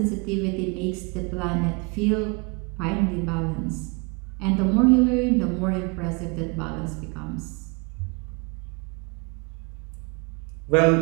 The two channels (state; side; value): quieter; left; 30.7 dB